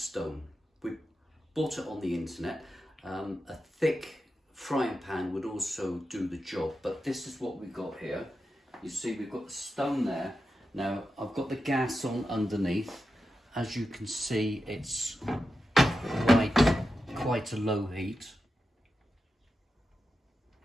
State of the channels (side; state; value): both; normal; correlation 0.90